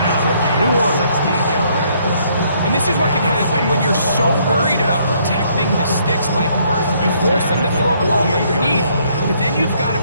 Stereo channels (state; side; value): inverted; both; correlation -0.67